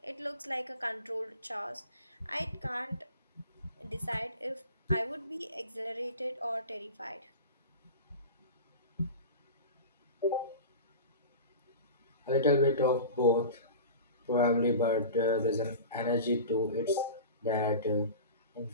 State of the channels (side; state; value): both; inverted; correlation -0.34